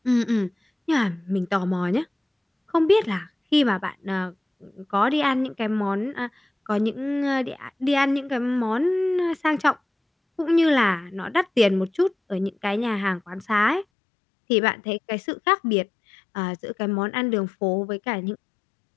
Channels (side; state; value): right; drops out; at 13.9 s